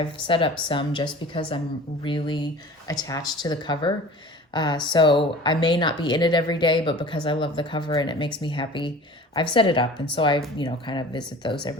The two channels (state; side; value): normal; both; correlation 0.42